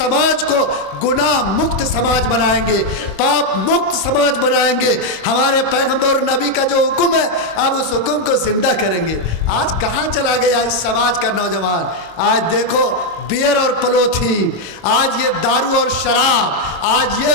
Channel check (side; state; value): right; late; 26 ms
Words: کو گناہ مکت سماج بنائیں گے، پاپ مکت سماج بنائیں گے۔ ہمارے پیغمبر اور نبی کا جو حکم ہے اب اس حکم کو زندہ کریں گے۔ آج کہاں چلا گیا اس سماج کا نوجوان؟ آج دیکھو بیئر اور پلوتھین، آج یہ دارو اور شراب، آج یہ